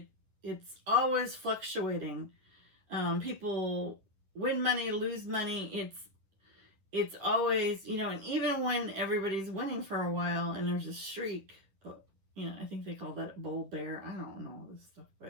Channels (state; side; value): late; left; 10 ms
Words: It's always fluctuating. People win money, lose money. It's always, you know, and even when everybody's winning for a while and there's a streak, you know, I think they call that bull bear. I don't know all this stuff,